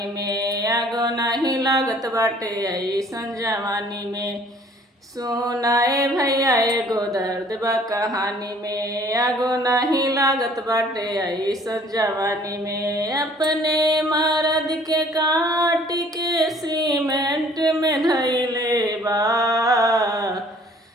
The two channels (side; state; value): both; normal; correlation 0.55